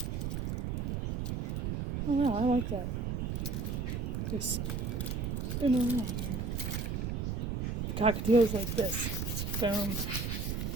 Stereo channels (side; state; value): right; noise; rumble, 1 dB below the sound